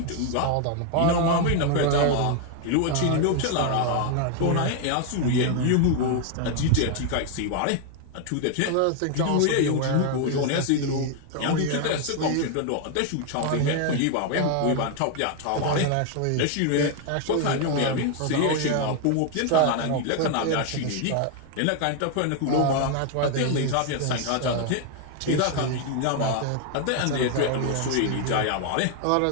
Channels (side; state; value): both; different; correlation 0.00